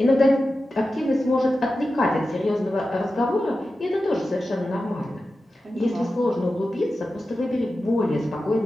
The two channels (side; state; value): both; normal; correlation 0.93